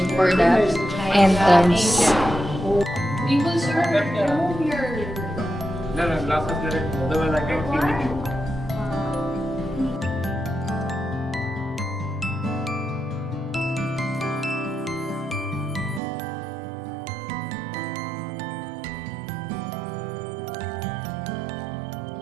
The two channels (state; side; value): drops out; left; at 16.0 s